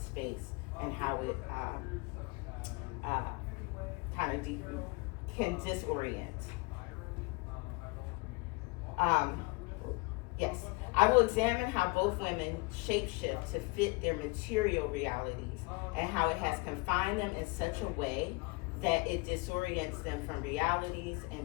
and how it can disorient. Yes, I will examine how both women shapeshift to fit their material realities and how it has confined them in such a way that it disorients them from realities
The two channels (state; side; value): quieter; right; 25.7 dB